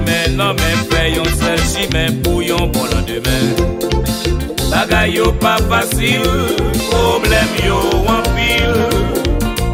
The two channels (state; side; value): identical; both; correlation 1.00